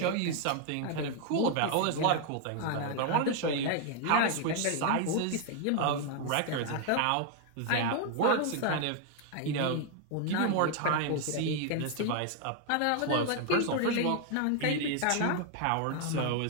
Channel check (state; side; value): different; both; correlation 0.00